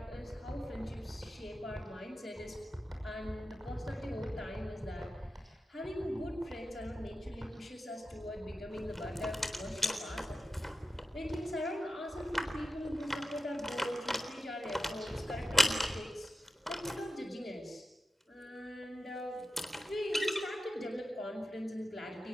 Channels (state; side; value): normal; both; correlation 0.92